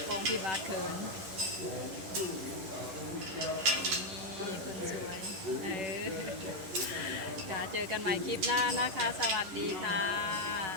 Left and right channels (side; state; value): left; late; 11 ms